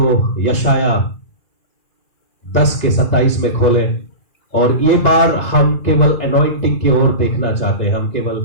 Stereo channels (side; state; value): right; late; 2.0 ms